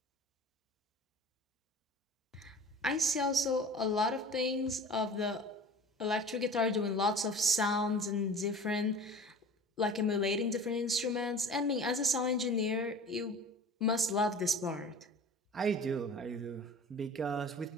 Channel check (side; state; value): both; normal; correlation 0.41